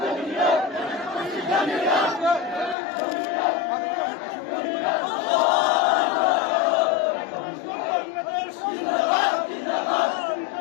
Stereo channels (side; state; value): right; drops out; at 2.8 s